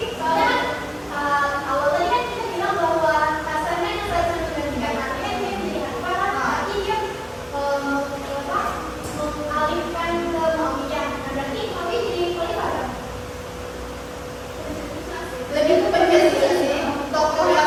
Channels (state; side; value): identical; both; correlation 1.00